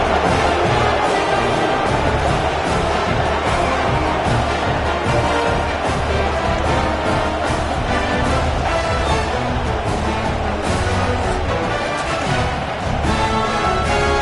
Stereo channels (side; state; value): both; identical; correlation 1.00